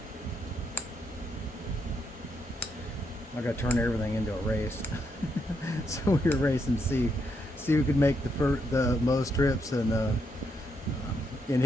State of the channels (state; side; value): normal; both; correlation 0.79